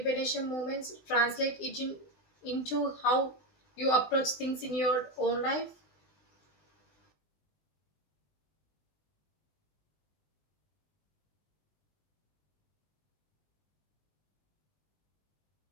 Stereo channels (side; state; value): right; late; 20 ms